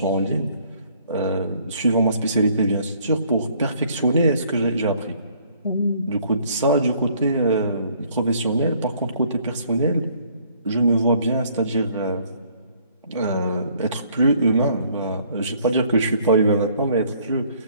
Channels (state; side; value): inverted; both; correlation -0.62